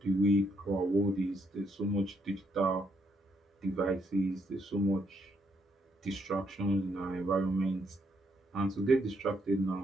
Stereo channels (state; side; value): normal; both; correlation 0.74